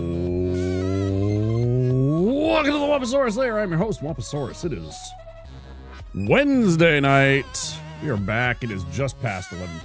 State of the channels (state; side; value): identical; both; correlation 1.00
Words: to the Wamposaurus Lair. I'm your host, Wamposaurus. It is Wednesday night. We are back. It is just past 11